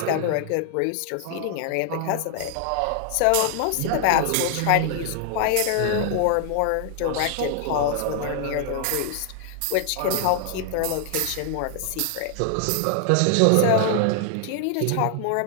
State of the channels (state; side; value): different; both; correlation 0.00